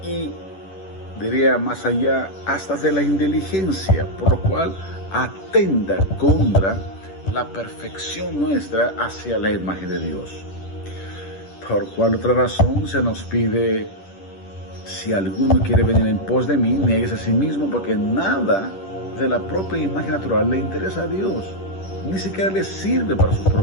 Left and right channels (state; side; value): late; right; 10 ms